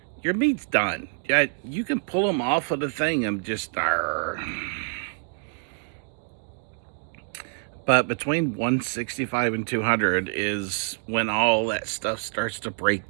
your meat's done. Yeah, you can pull them off of the thing and just But between 165 and 200 is when all that stuff starts to break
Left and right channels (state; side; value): silent; left; 61 dB below the other